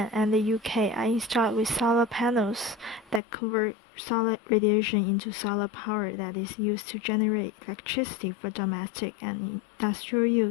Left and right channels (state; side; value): drops out; right; at 3.2 s